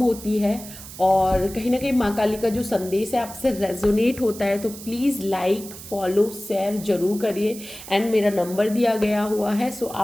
है। और कहीं ना कहीं माँ काली का जो संदेश है आपसे रेजोनेट होता है तो प्लीज़ लाइक, फॉलो, शेयर जरूर करिए। एंड मेरा नंबर दिया गया हुआ है, सो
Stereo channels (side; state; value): right; noise; hiss, 14 dB below the sound